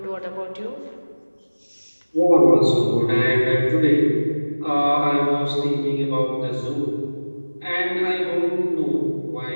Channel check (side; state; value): both; inverted; correlation -1.00